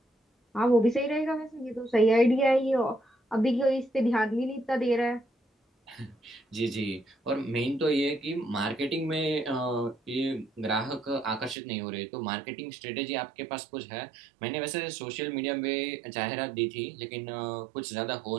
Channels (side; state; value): left; drops out; at 11.6 s